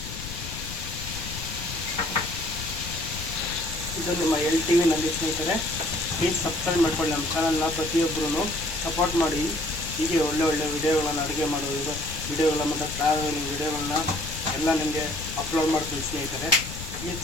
ಇದು ನಿಮ್ಮ LTVನಲ್ಲಿ ಸ್ನೇಹಿತರೆ. ಪ್ಲೀಸ್ ಸಬ್ಸ್ಕ್ರೈಬ್ ಮಾಡ್ಕೊಳ್ಳಿ ನಮ್ಮ ಚಾನಲ್ನ. ಪ್ರತಿಯೊಬ್ಬರೂ ಸಪೋರ್ಟ್ ಮಾಡಿ. ಹೀಗೆ ಒಳ್ಳೆ ವಿಡಿಯೋಗಳನ್ನ, ಅಡುಗೆ ಮಾಡೋದು ವಿಡಿಯೋಗಳನ್ನ ಮತ್ತು ಟ್ರಾವೆಲಿಂಗ್ ವಿಡಿಯೋಗಳನ್ನ ಎಲ್ಲ ನಿಮಗೆ ಅಪ್ಲೋಡ್ ಮಾಡ್ತೀನಿ ಸ್ನೇಹಿತರೆ. ಪ್ಲೀಸ್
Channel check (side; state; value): left; noise; rumble, 10 dB below the sound